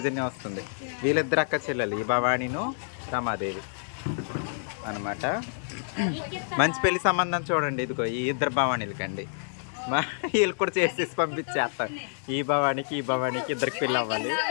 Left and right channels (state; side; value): silent; right; digital silence